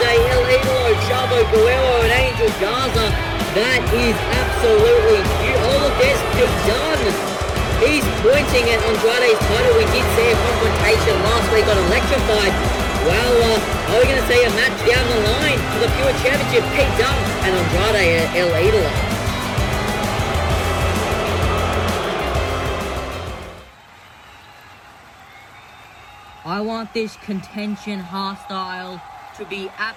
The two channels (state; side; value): identical; both; correlation 1.00